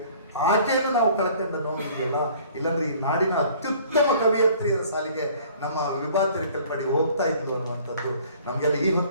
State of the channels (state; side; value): inverted; both; correlation -0.52